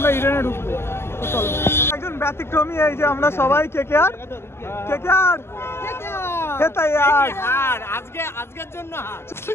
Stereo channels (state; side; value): late; right; 0.12 ms